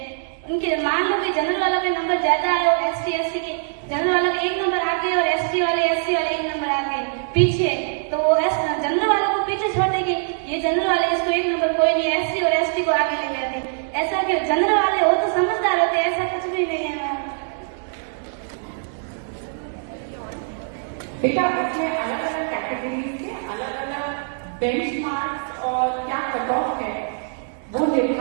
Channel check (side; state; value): left; silent; digital silence